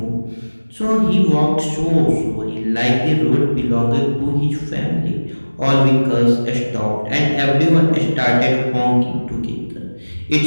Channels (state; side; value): inverted; both; correlation -1.00